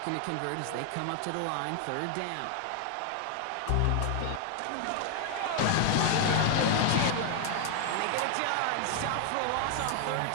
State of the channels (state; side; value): different; both; correlation 0.00